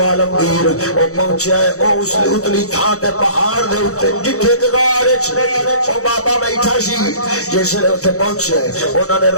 عالمگیر او پہنچیا ہے او اس اتلی تھان تے پہاڑ دے اوتے جتھے غار وچ او بابا بیٹھا سی جس لے اوتے پہنچے انہاں نے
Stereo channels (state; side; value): late; right; 0.65 ms